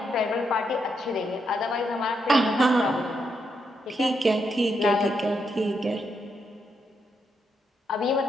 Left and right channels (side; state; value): both; normal; correlation 0.80